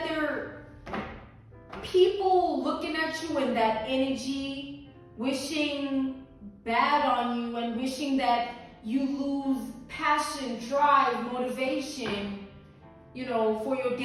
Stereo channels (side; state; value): both; identical; correlation 1.00